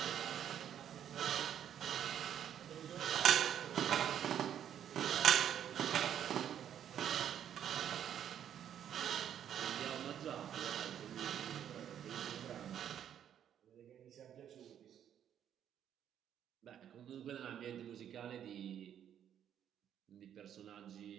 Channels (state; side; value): quieter; left; 9.7 dB